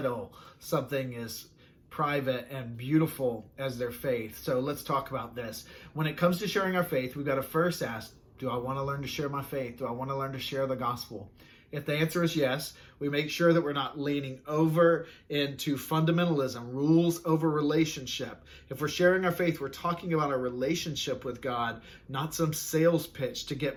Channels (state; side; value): identical; both; correlation 1.00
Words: something as private and beautiful as their faith. So let's talk about this. When it comes to sharing our faith, we've got to first ask, do I want to learn to share my faith? Do I want to learn to share the gospel? If the answer is yes, we make sure that we're not leaning over into fundamentalism, rules over relationship. If we're sharing our faith, we're talking about our relationship with God, not some sales pitch to